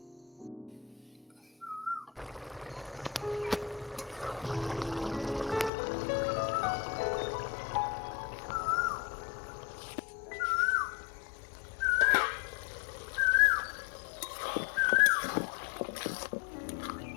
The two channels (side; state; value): right; drops out; at 5.7 s